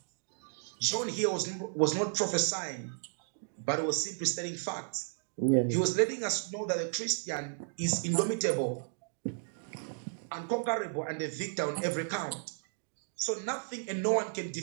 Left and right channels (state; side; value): silent; left; digital silence